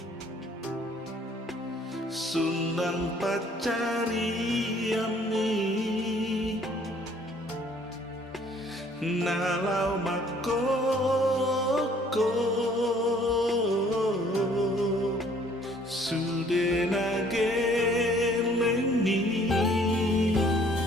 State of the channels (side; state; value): both; normal; correlation 0.59